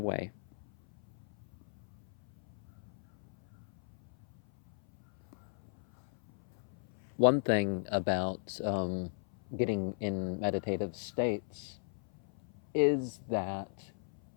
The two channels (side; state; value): right; silent; 53 dB below the other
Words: One thing about getting in meditative states is that